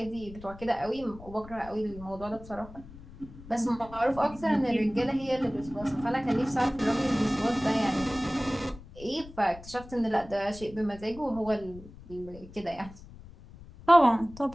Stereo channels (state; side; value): noise; left; rumble, 17 dB below the sound